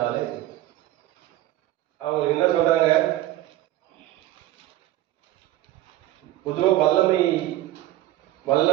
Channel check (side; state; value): left; quieter; 15.0 dB